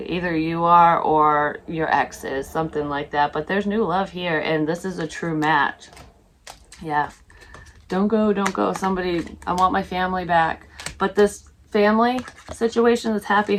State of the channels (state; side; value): identical; both; correlation 1.00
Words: Either you are, or your ex is, something like that. But there's new love here, and this is a true match. Yeah. Don't go, don't go. Somebody, I want my family back. But this family situation, this happy